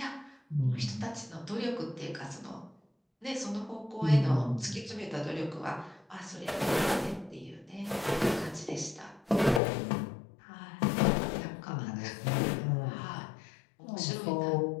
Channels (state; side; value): drops out; right; at 9.6 s